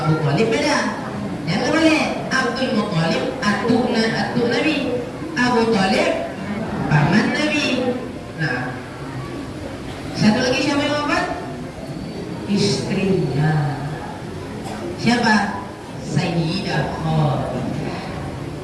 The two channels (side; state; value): both; identical; correlation 1.00